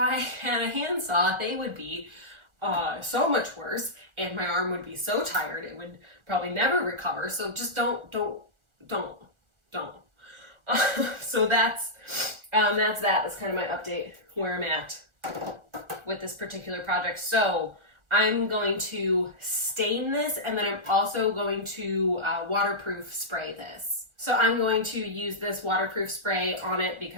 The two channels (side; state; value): left; late; 1.4 ms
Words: had a handsaw, they would be so much worse, and my arm would be so tired it would probably never recover. So just don't. So that's that. That's kind of my update where I'm at with this particular project. So I'm going to stain this, and then I'm also going to waterproof spray this. So I'm going to use this waterproof spray on it